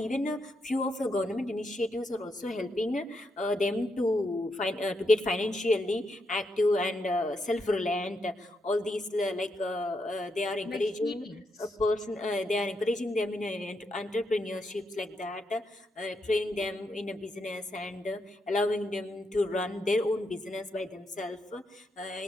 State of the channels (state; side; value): normal; both; correlation 0.81